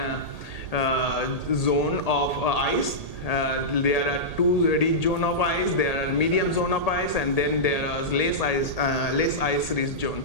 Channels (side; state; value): right; late; 1.8 ms